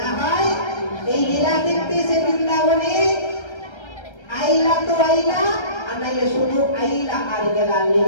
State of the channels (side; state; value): right; late; 1.3 ms